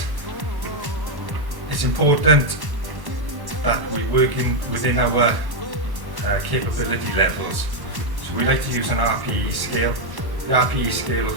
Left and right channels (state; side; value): late; left; 1.1 ms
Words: it's important that we work within our capability levels. So we like to use an RPE scale. The RPE scale